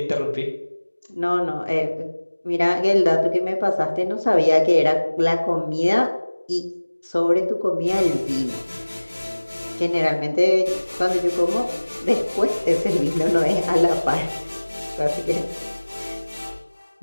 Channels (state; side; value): inverted; both; correlation -1.00